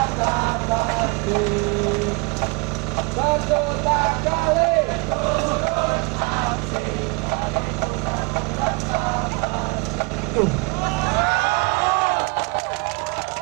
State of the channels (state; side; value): quieter; left; 29.3 dB